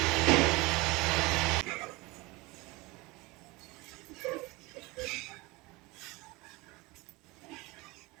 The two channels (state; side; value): quieter; left; 23.3 dB